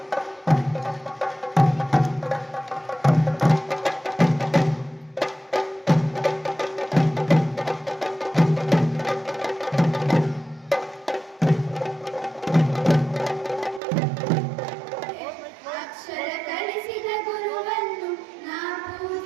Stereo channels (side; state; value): left; drops out; at 13.8 s